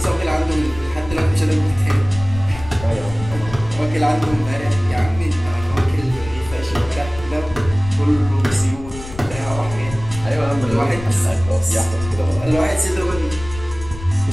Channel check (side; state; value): left; noise; rumble, 13 dB below the sound